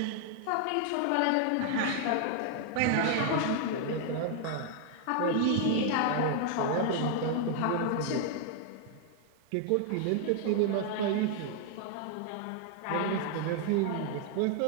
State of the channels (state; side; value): different; both; correlation 0.00